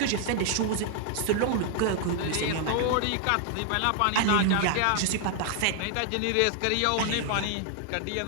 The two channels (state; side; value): different; both; correlation 0.00